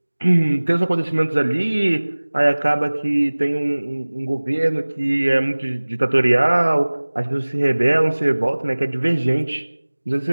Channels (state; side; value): inverted; both; correlation -1.00